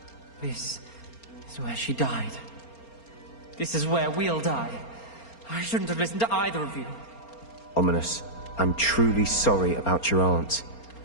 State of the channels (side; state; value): right; late; 4.3 ms